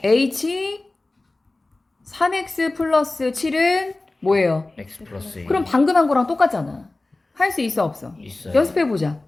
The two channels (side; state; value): right; quieter; 3.0 dB